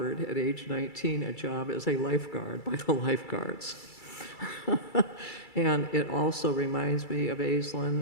at age 19 a job as a lifeguard by the lifeguards. And it also reminds me of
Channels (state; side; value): late; right; 2.3 ms